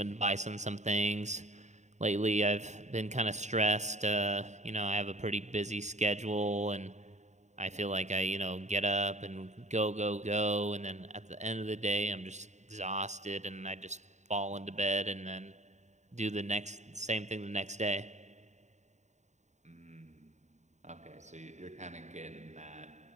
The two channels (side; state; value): left; late; 0.34 ms